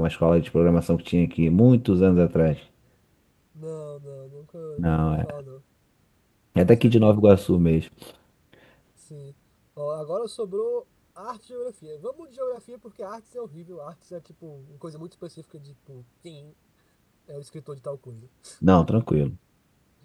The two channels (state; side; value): identical; both; correlation 1.00